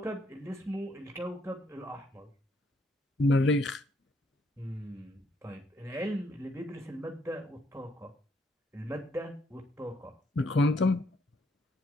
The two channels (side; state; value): both; normal; correlation 0.71